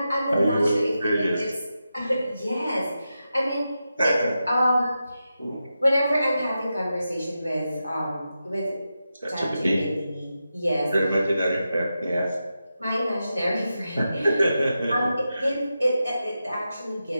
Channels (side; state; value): both; inverted; correlation -0.89